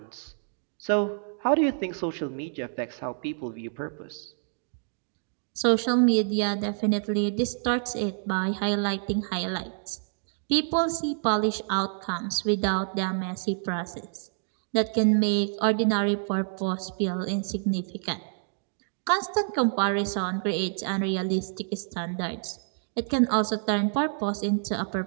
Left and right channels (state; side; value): silent; left; digital silence